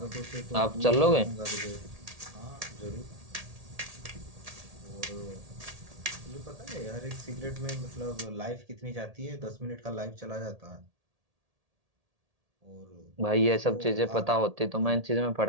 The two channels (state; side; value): late; left; 1.8 ms